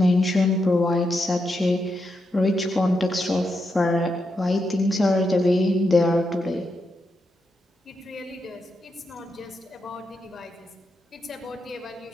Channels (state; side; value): normal; both; correlation 0.84